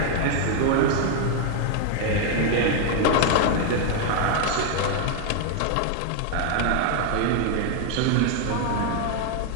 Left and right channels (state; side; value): different; both; correlation 0.00